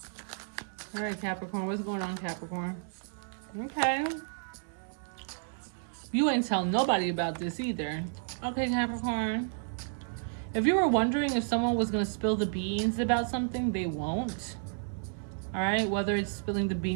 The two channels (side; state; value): left; silent; digital silence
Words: Alright, Capricorn. What's going on, Capricorn? Okay. You ain't telling nobody about this either. Okay, Capricorn. If you were wondering if someone was going to spill the beans about something, they won't. Alright? Whether it's spilling the